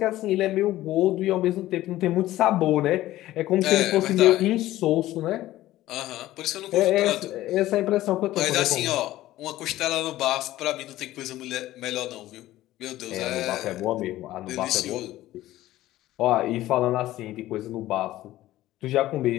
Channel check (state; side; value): quieter; right; 15.4 dB